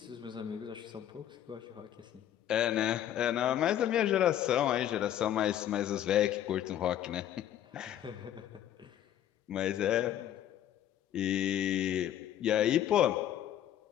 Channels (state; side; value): quieter; right; 11.2 dB